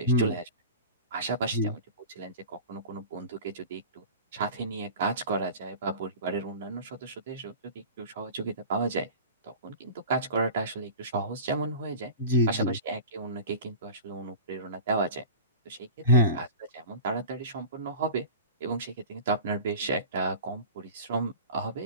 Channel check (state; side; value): inverted; both; correlation -0.35